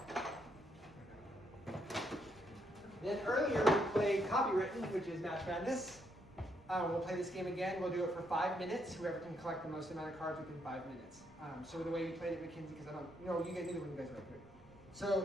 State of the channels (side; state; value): right; noise; rumble, 26 dB below the sound